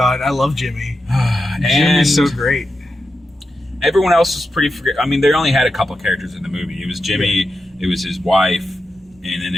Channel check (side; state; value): both; normal; correlation 0.88